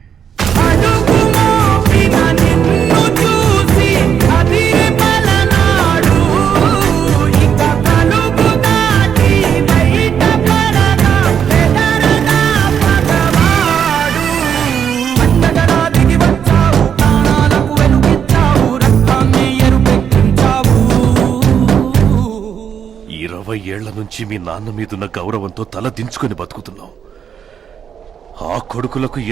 ఏళ్ల నుంచి మీ నాన్న మీదున్న గౌరవంతో తల దించుకుని బతుకుతున్నాం. ఆ కొడుకులకు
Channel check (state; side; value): quieter; left; 8.0 dB